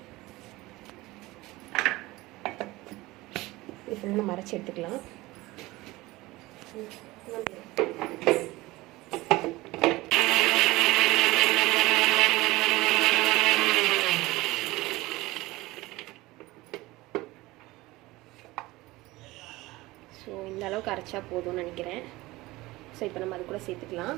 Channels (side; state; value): left; quieter; 19.8 dB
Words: இது ஃபுல்லாக நம்ம அரைச்சி எடுத்துக்கலாம். ஸோ இந்த அளவுக்கு அரைச்சா போதும்னு நினைக்கிறேன். ஸோ இப்போ நம்ம அது கூட சேர்த்துக்கலாம்.